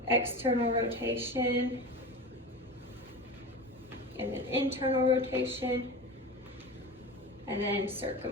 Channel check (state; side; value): normal; both; correlation 0.29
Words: external rotation, and then internal rotation, and then